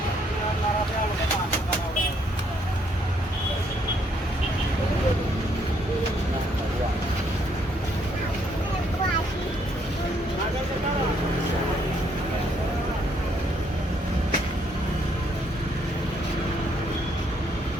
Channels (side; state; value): both; normal; correlation 0.70